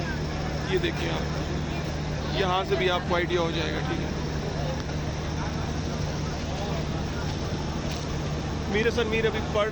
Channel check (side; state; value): both; identical; correlation 1.00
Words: ये देखिए आप, यहाँ से भी आपको आइडिया हो जाएगा, ठीक है। मीर हसन मीर अभी